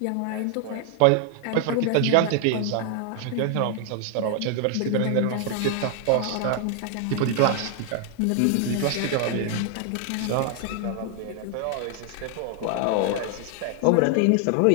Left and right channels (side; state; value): both; different; correlation 0.00